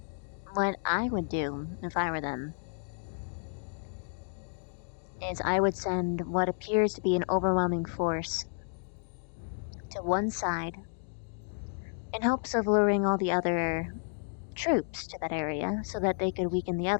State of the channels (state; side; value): silent; right; digital silence